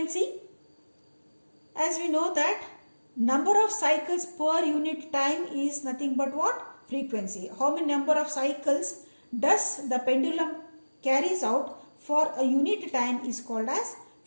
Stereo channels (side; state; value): both; inverted; correlation -1.00